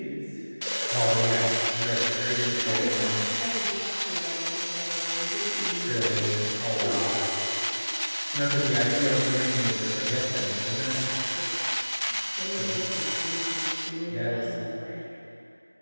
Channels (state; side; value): inverted; both; correlation -1.00